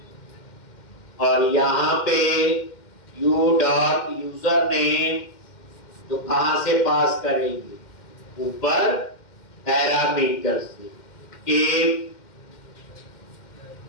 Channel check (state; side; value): late; right; 2.1 ms